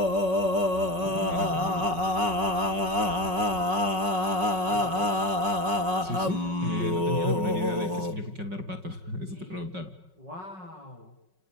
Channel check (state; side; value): late; left; 5.4 ms